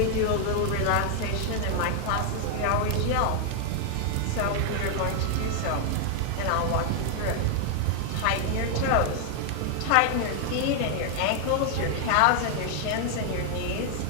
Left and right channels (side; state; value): both; different; correlation 0.00